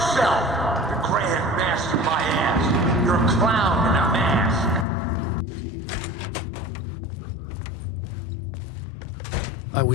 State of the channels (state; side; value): drops out; right; at 4.9 s